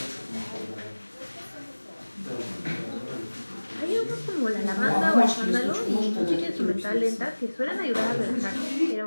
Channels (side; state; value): both; inverted; correlation -1.00